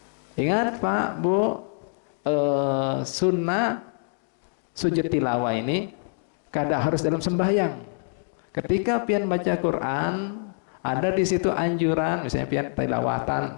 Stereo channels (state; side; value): silent; right; digital silence